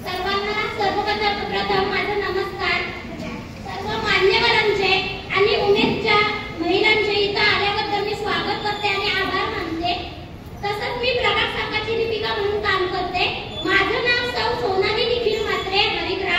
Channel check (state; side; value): identical; both; correlation 1.00